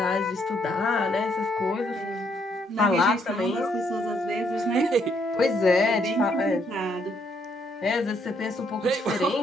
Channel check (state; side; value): normal; both; correlation 0.72